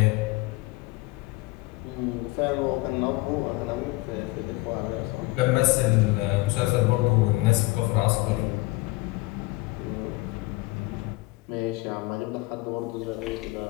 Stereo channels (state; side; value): quieter; right; 22.0 dB